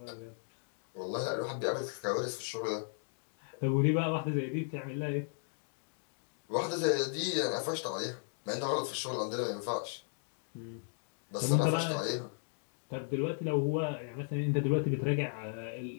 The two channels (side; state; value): right; silent; digital silence